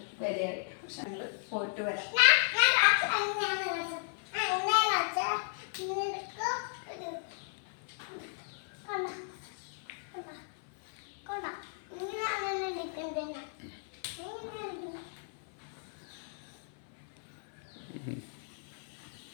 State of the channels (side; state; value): right; silent; 55 dB below the other